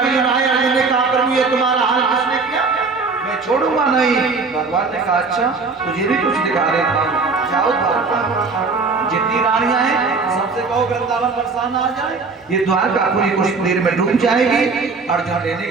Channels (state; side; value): quieter; left; 4.3 dB